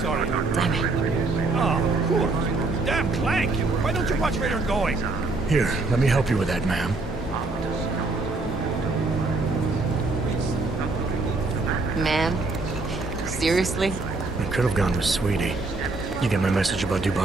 Damn it. Oh, cool. Damn Clank. Why don't you watch where you're going? Here, let me help you with that, ma'am. Man, seriously? I could have gone with Sweetie. You get my message about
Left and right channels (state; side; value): quieter; left; 3.4 dB